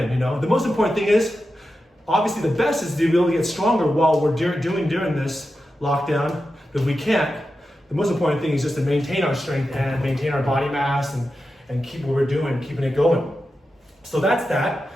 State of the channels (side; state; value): both; normal; correlation 0.90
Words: The most important thing is, obviously the best is to be able to get stronger while we're doing during this lockdown. But if we can't, the most important thing is just to maintain our strength and maintain our body mass and keep what we're doing, keeping it going. So that's that.